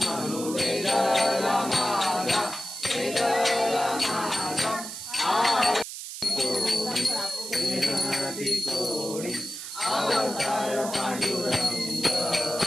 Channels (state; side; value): noise; right; hiss, 9 dB below the sound